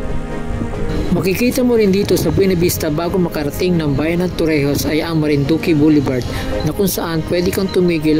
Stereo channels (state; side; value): identical; both; correlation 1.00